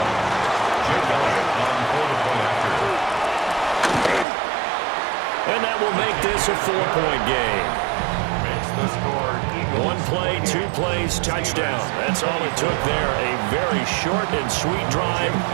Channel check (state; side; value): drops out; left; at 4.2 s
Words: And that will make this a 4-point game. Makes the score Eagles. 1 play, 2 plays, touchdown. That's all it took there. A very short and sweet drive